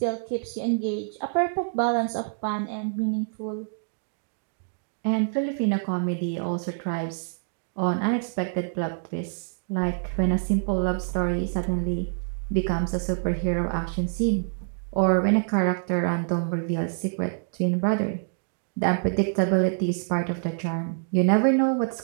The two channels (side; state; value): left; silent; digital silence